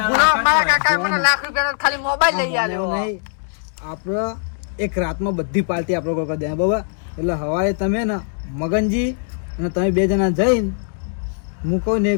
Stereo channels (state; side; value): silent; right; digital silence